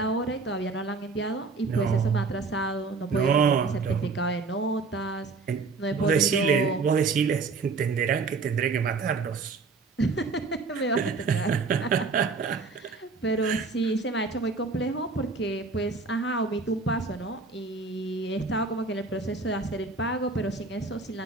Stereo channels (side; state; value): left; quieter; 4.3 dB